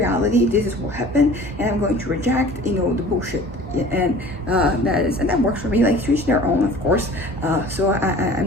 this is what happened, and I'm going to reject, you know, the bullshit. And that works for me. Like, to each their own, of course. So I'm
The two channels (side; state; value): both; normal; correlation 0.45